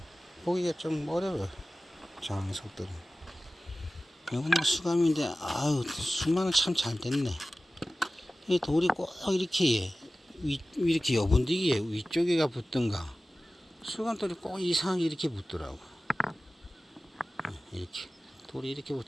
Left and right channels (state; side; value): normal; both; correlation 0.96